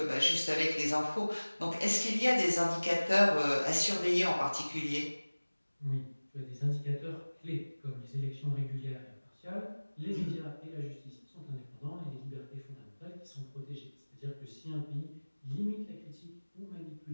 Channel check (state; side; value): inverted; both; correlation -1.00